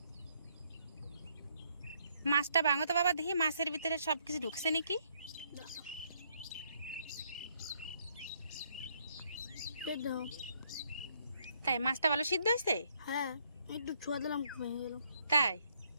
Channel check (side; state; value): both; inverted; correlation -0.70